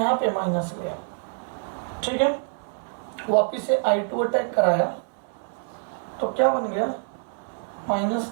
पे माइनस गया। ठीक है, वापिस से I2 अटैक कराया तो क्या बन गया? Minus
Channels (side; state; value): left; silent; 61 dB below the other